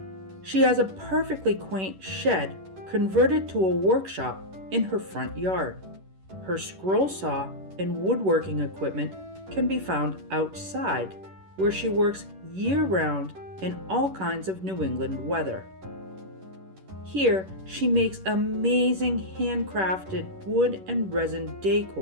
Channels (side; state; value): left; late; 11 ms